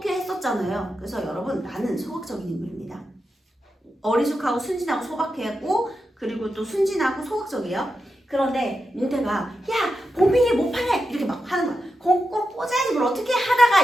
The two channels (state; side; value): normal; both; correlation 0.88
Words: 했었잖아요. 그래서 여러분 나는 소극적인 인물입니다. 어리숙하고 순진하고 소박하고 그리고 또 순진하고 소극적이에요. 그런데 뭉태가 야 봉필이 못 파네 이렇게 막 하는 거야. 꼭 꽂아야지 뭘 어떻게